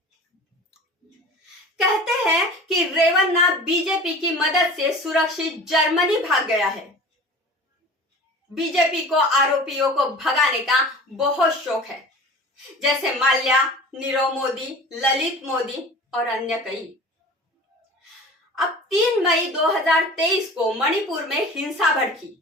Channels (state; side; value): normal; both; correlation 0.39